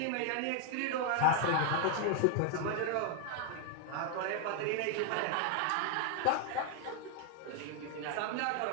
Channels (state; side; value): different; both; correlation 0.00